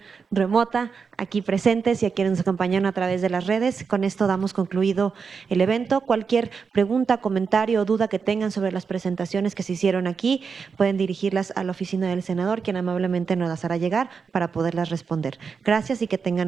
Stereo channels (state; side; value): quieter; left; 5.6 dB